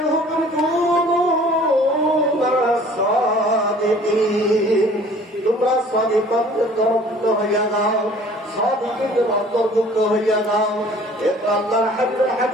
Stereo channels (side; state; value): both; normal; correlation 0.51